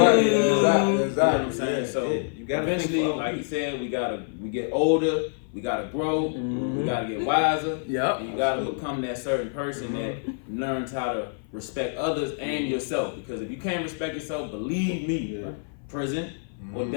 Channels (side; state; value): right; silent; 55 dB below the other